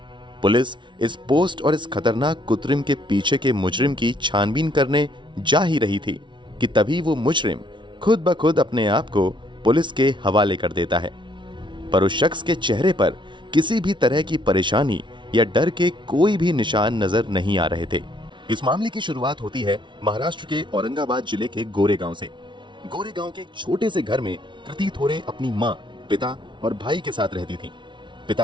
पुलिस इस पोस्ट और इस खतरनाक कुत्रिम के पीछे के मुजरिम की छानबीन करने जा ही रही थी कि तभी वो मुजरिम खुद ब खुद अपने आप को पुलिस के हवाले कर देता है। पर उस शख्स के चेहरे पर किसी भी तरह की परेशानी या डर के कोई भी निशान नजर नहीं आ रहे थे। इस मामले की शुरुआत होती है महाराष्ट्र के औरंगाबाद जिले के गोरेगांव से। गोरेगांव के एक छोटे से घर में कृति थोरे अपनी माँ, पिता और भाई के साथ रहती थी।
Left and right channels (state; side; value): late; left; 0.24 ms